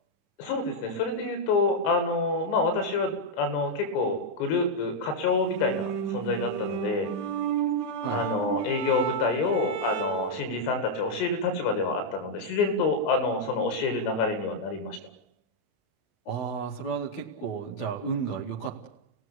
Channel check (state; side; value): late; right; 19 ms